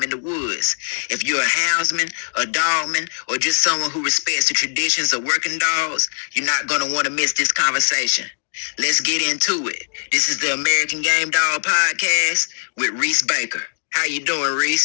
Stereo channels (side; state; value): right; silent; digital silence